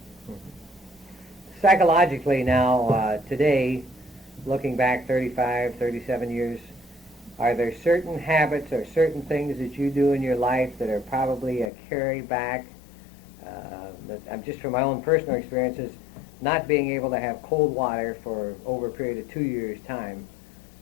Psychologically now, today, looking back 35, 37 years, are there certain habits or certain things that you do in your life that are probably a carry back? I'm just from my own personal experiences, not being able to have cold water for over a period of 2 years' time.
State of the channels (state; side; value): drops out; right; at 11.7 s